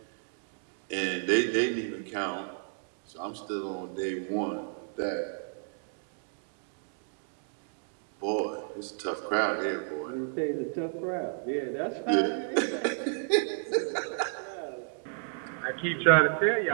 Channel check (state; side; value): silent; left; digital silence